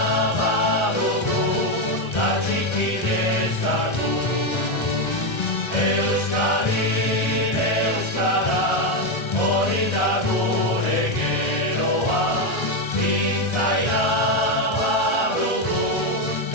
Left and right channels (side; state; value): right; late; 1.3 ms